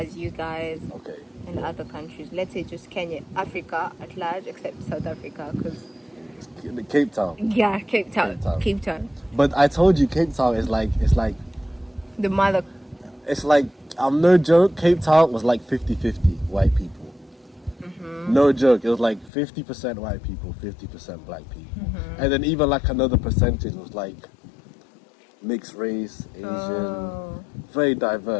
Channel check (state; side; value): drops out; right; at 19.3 s